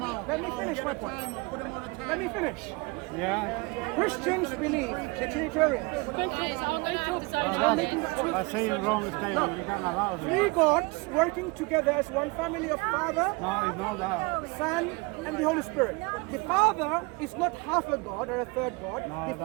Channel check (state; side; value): quieter; left; 27.0 dB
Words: Let me finish my point. Let me finish. Yeah. Christians believe, the Trinitarians, I'm making that truth. By saying wrong statement, you can't allow Three it. gods working together as one family of Father, No, it's not that. Son, and the Holy Spirit. The Father is not half a God or a third God. No, The that's